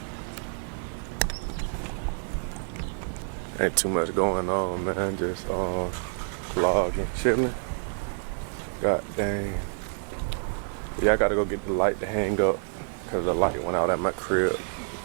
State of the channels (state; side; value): silent; left; 56 dB below the other